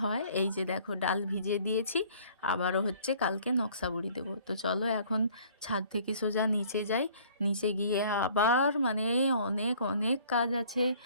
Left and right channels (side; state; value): both; inverted; correlation -0.55